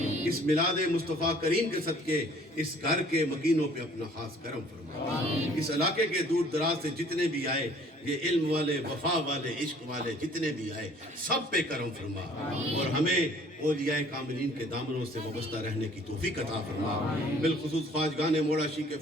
اس میلاد مصطفیٰ کریم کے صدقے اس گھر کے مکینوں پہ اپنا خاص کرم فرما. اس علاقے کے دور دراز سے جتنے بھی آئے، یہ علم والے، وفا والے، عشق والے جتنے بھی آئے، سب پہ کرم فرما. اور ہمیں اولیاء کاملین کے دامنوں سے وابستہ رہنے کی توفیق عطا فرما. بالخصوص خواجگان موڑاشی کے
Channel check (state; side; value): normal; both; correlation 0.55